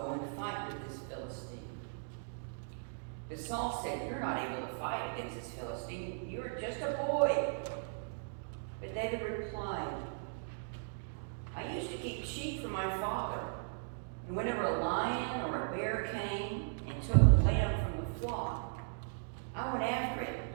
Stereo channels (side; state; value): left; silent; digital silence